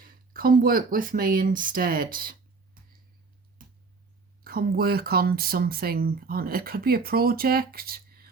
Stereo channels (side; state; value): left; quieter; 4.4 dB